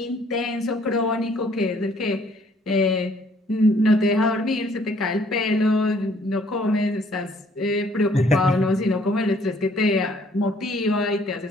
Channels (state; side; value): normal; both; correlation 0.62